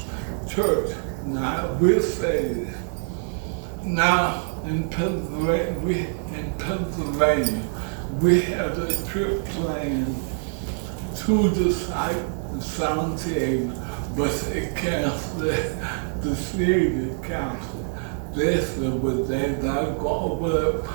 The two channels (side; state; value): left; silent; 62 dB below the other